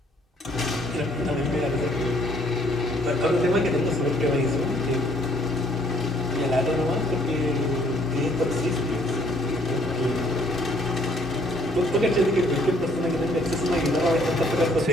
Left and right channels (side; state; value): both; normal; correlation 0.64